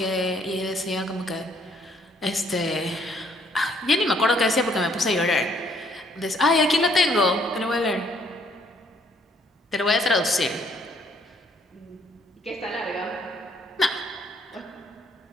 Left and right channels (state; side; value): normal; both; correlation 0.65